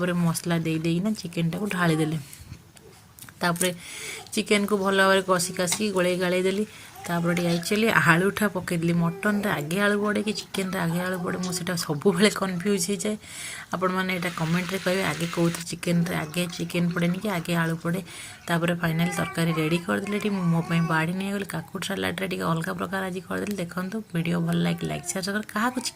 मसला देना चिकेन टाक ढालीदेली चिकेन को भल भाव कषि कासिक गोले गाड़े देली एक्चुअली आलूटा पकईदेली मटन आगे आलू पड़े कि चिकेन आगे आलू पड़े मुझे सब कन्फ्यूज हो जाए आपण मैंने यहाँ कमेंट रे कहे आगे कौन चिकेन आगे चिकेन पड़ेनि कि आगे आलू पड़े फाइनाल तरकारी रेडी करदेली मोपाई बाड़ी नहीं गली काकुड़ सालाड अलग प्रकार आज करदेली देखो वीडियो भल लाइक शेयर क्या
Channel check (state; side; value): identical; both; correlation 1.00